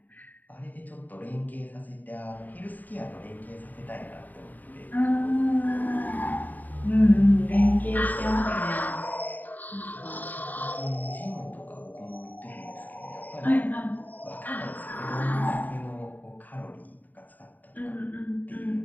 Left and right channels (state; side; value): late; right; 0.084 ms